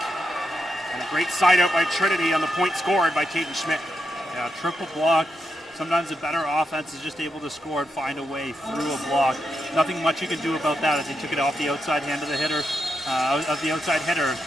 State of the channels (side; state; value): both; normal; correlation 0.84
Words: And a great side out by Trinity on the point scored by Caden Schmidt. Yeah, triple block. Sometimes a better offense is just able to score and find a way through a block. Nothing much you can do about that as he took it off the outside hand of the hitter,